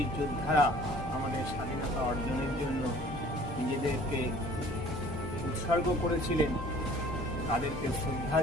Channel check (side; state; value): both; normal; correlation 0.51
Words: যোদ্ধারা আমাদের স্বাধীনতা অর্জনের জন্য নিজেদেরকে উৎসর্গ করেছিলেন তাদেরকে শ্রদ্ধা